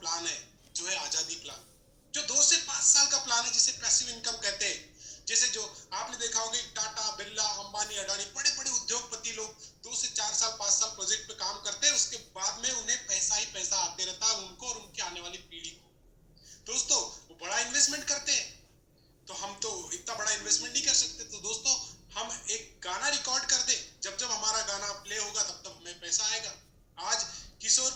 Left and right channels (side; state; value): both; identical; correlation 1.00